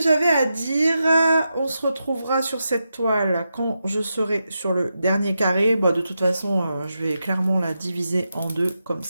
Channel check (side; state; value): both; inverted; correlation -0.87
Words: j'avais à dire. On se retrouvera sur cette toile quand je serai sur le dernier carré. Bah, de toute façon, je vais clairement la diviser en deux comme